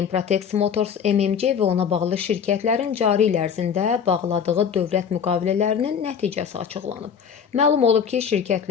Improtex Motors MMC və ona bağlı şirkətlərin cari il ərzində bağladığı dövlət müqavilələrinin nəticəsi açıqlanıb. Məlum olub ki,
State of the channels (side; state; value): right; quieter; 7.3 dB